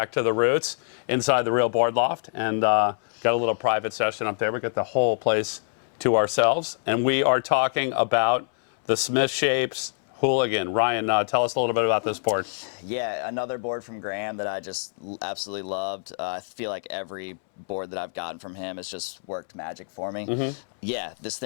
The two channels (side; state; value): right; silent; 61 dB below the other